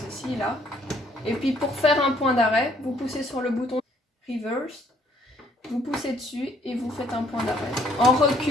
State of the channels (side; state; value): both; normal; correlation 0.64